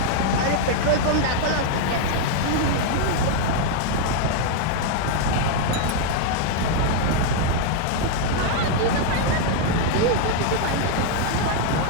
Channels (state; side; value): different; both; correlation 0.00